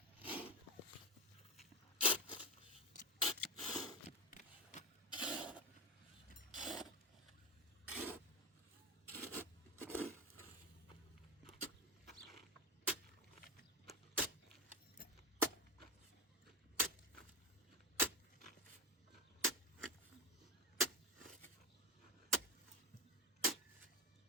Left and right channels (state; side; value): normal; both; correlation 0.14